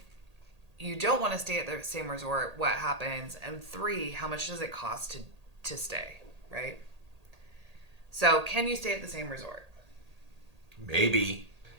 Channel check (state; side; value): late; left; 1.8 ms